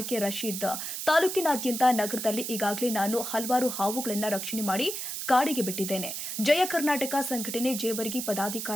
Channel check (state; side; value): noise; right; hiss, 5 dB below the sound